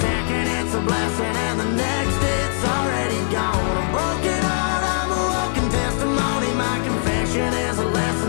it's a blessing, and the next it's already gone. I'm broken heart, I'm a walking testimony. My confession is a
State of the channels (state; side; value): silent; right; 55 dB below the other